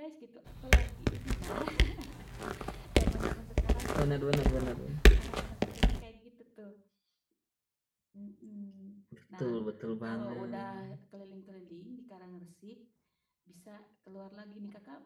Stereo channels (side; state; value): both; identical; correlation 1.00